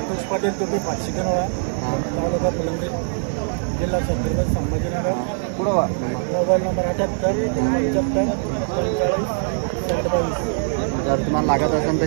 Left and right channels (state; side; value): silent; left; digital silence